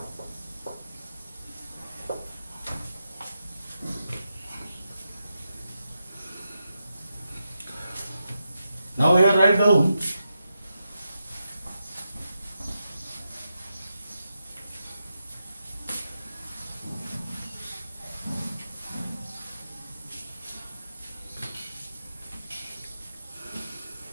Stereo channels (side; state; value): both; inverted; correlation -0.87